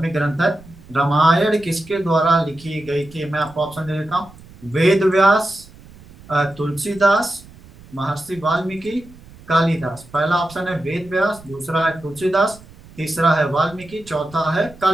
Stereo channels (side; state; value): right; noise; rumble, 22 dB below the sound